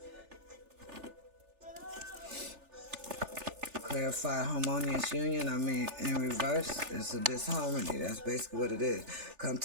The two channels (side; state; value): left; late; 3.4 ms